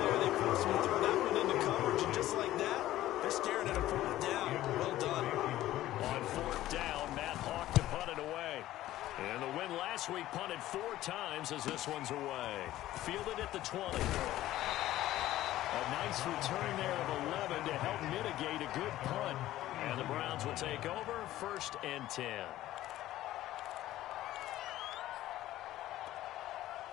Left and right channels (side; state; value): right; quieter; 14.6 dB